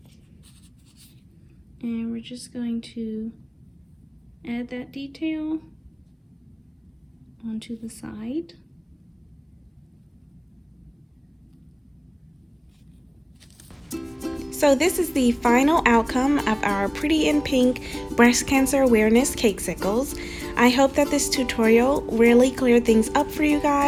and we're just going to add that detail onto the side. So this is the final outcome of our Pretty in Pink Breast Cancer Awareness Cakesicles. I hope that this tutorial really cleared things up for you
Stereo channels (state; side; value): identical; both; correlation 1.00